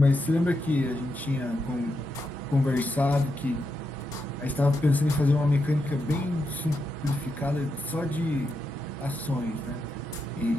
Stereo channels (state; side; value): normal; both; correlation 0.84